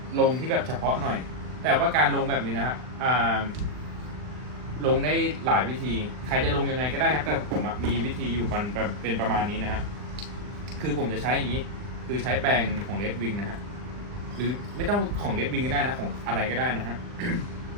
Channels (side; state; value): left; late; 39 ms